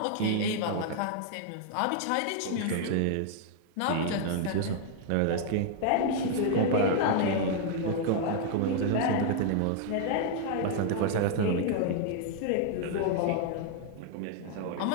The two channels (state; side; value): different; both; correlation -0.01